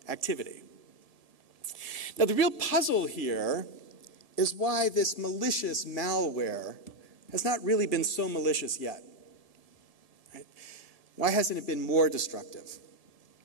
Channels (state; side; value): late; left; 1.7 ms